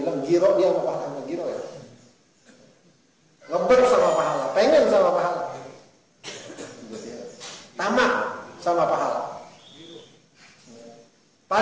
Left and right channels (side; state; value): both; identical; correlation 1.00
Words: giro, dia mau pahala, giro ya. Ngeber sama pahala, pengen sama pahala. Tamak sama pahala.